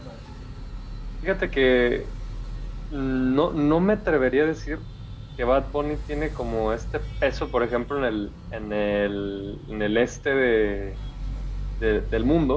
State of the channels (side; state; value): both; identical; correlation 1.00